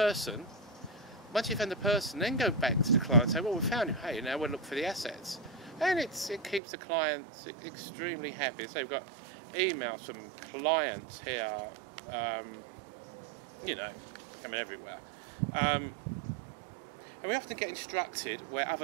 Once you've found the person, then go back to the client and say, well, we found him, hey, now we'll look for the assets. And it keeps the clients extremely happy. So we've got emails from clients here, coming everywhere. And we often get instructed where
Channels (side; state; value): left; drops out; at 6.6 s